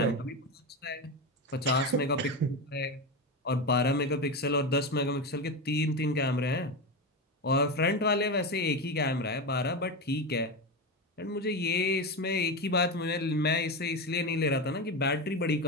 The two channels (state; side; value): normal; both; correlation 0.17